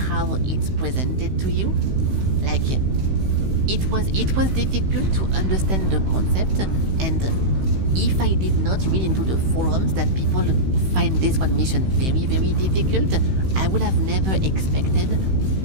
it's presented to you. Like, it was difficult to understand the concept, and if I did not read into the forums that people find this one mission very, very difficult, I would have never expected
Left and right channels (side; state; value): left; late; 16 ms